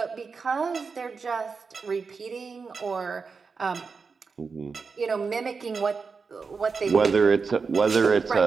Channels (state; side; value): quieter; left; 5.0 dB